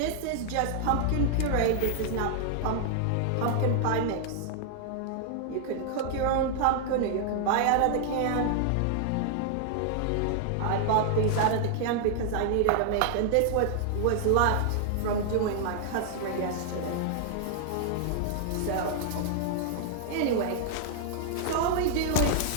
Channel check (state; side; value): different; both; correlation -0.01